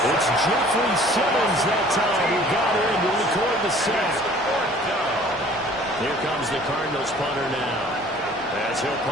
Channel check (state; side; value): normal; both; correlation 0.51